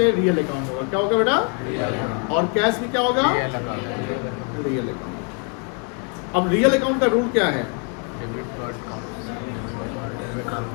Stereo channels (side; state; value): right; quieter; 37.9 dB